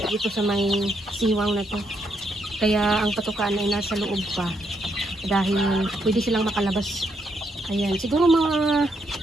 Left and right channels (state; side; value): normal; both; correlation 0.77